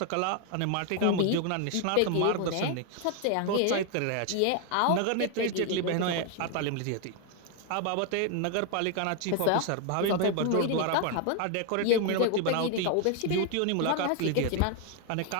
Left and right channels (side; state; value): both; different; correlation 0.01